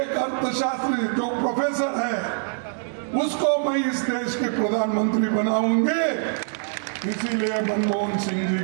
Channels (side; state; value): left; silent; digital silence